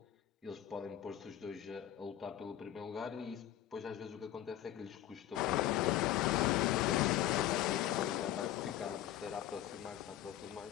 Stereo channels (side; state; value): right; quieter; 12.5 dB